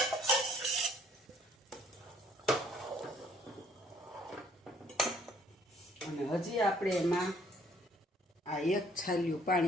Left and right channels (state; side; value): normal; both; correlation 0.62